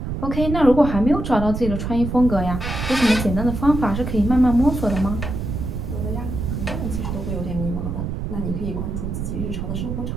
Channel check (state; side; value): noise; right; rumble, 4 dB below the sound